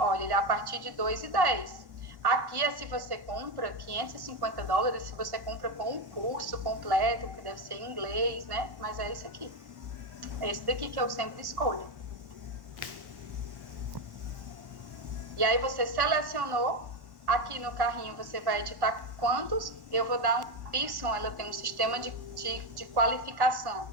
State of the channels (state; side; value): late; left; 1.1 ms